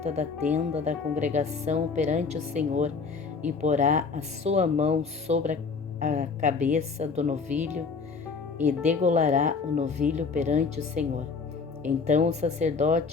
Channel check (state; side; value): quieter; right; 4.9 dB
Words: da tenda da congregação perante o Senhor, e porá a sua mão sobre a cabeça do novilho, e degolará o novilho perante o Senhor. Então o